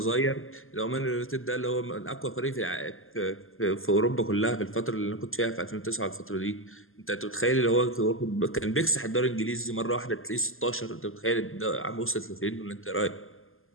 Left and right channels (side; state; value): right; late; 0.60 ms